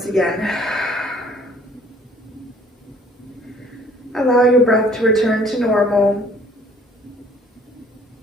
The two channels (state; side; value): normal; both; correlation 0.56